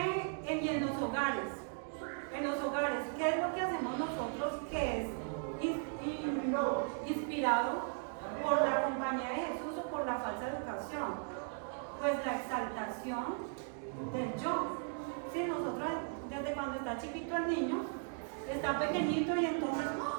y en los hogares? ¿Qué es lo que hacemos nosotros que es inspirado por la Compañía de Jesús o por la falsa educación? Pues la exaltación del yo. Sí, nosotros desde cuando está chiquito el niño, está pequeñito y entonces,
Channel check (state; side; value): silent; left; 53 dB below the other